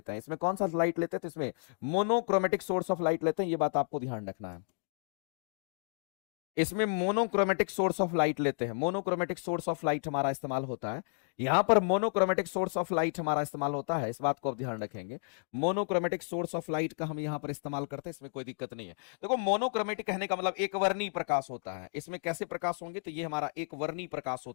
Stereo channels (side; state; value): right; silent; digital silence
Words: हैं। इसमें कौन सा लाइट लेते हैं, तो इसमें मोनोक्रोमेटिक सोर्स ऑफ लाइट लेते हैं, ये बात आपको ध्यान रखना है। इसमें मोनोक्रोमेटिक सोर्स ऑफ लाइट लेते हैं, मोनोक्रोमेटिक सोर्स ऑफ लाइट हमारा इस्तेमाल होता है। यहां पर मोनोक्रोमेटिक सोर्स ऑफ लाइट हमारा इस्तेमाल होता है, इस बात को आप ध्यान रखेंगे। मोनोक्रोमेटिक सोर्स ऑफ लाइट का हम यहां पर इस्तेमाल करते हैं, इसमें कोई दिक्कत नहीं है। देखो मोनोक्रोमेटिक कहने का मतलब एक वर्णी प्रकाश होता है। इसमें कैसे प्रकाश होंगे, तो ये हमारा एक वर्णी प्रकाश